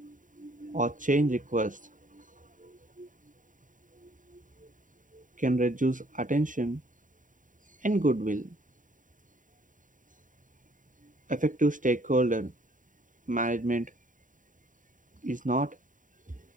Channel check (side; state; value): left; late; 0.38 ms